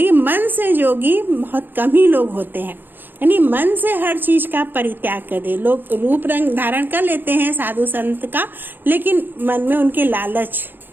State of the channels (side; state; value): left; late; 0.094 ms